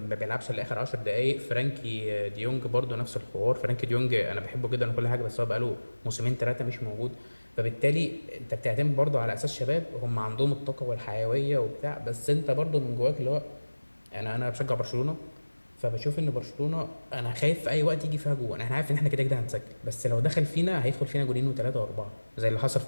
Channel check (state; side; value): inverted; both; correlation -1.00